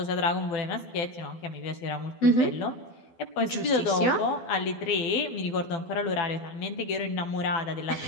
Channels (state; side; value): late; right; 12 ms